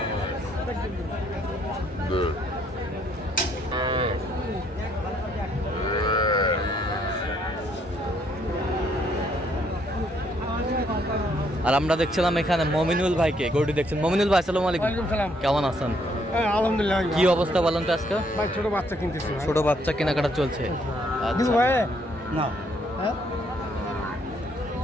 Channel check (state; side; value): normal; both; correlation 0.69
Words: আর আমরা দেখছিলাম এখানে মমিনুল ভাইকে গরুটি দেখছেন। মমিনুল ভাই আসসালামু আলাইকুম, কেমন আছেন? আলহামদুলিল্লাহ। কি অবস্থা বলেন তো আজকে? ভাই ছোট বাচ্চা কিনতেছি, ছোট বাচ্চা কেনাকাটা চলছে। আচ্ছা ভাই না হ্যাঁ